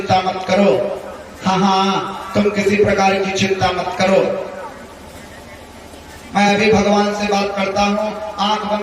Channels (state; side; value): identical; both; correlation 1.00